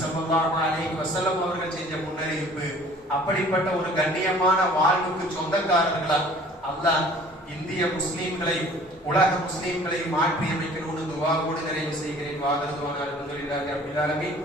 ஸல்லல்லாஹு அலைஹி வஸல்லம் அவர்கள் செஞ்ச முன்னறிவிப்பு. அப்படிப்பட்ட ஒரு கண்ணியமான வாழ்வுக்கு சொந்தக்காரர்களா அல்லாஹ் இந்திய முஸ்லிம்களை, உலக முஸ்லிம்களை மாற்றி அமைக்கணும்னு துஆவோடு நிறைவு செய்கிறேன். வாகருதுவான அல்ஹம்துலில்லாஹி ரப்பில் ஆலமீன்.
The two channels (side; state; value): both; normal; correlation 0.51